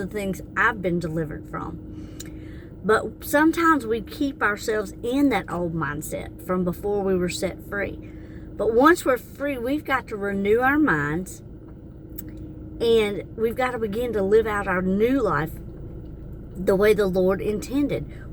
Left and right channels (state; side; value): identical; both; correlation 1.00